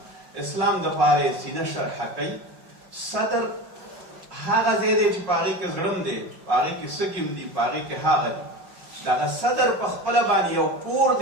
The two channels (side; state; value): left; late; 5.4 ms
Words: اسلام د پاره سینه شرح کوي. صدر هغه ځای دی چې په هغې کې زړه دی، په هغې کې سږي دي، په هغې کې هغه دي. دغه صدر په خپله باندې یو کور